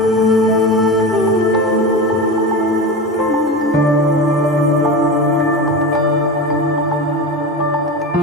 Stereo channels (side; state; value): both; normal; correlation 0.25